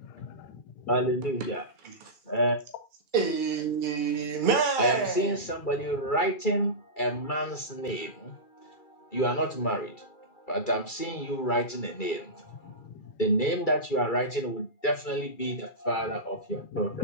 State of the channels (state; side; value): late; right; 2.3 ms